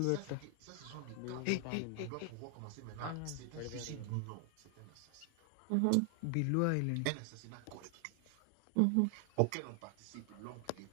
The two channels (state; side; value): different; both; correlation 0.00